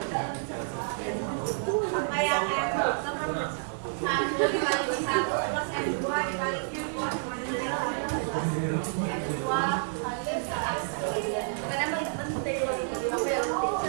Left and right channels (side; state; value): left; silent; 55 dB below the other